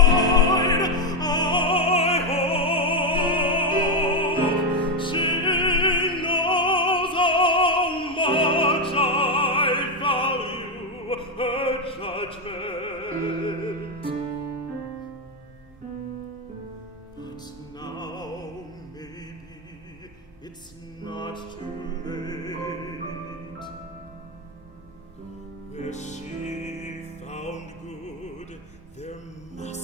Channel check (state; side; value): normal; both; correlation 0.06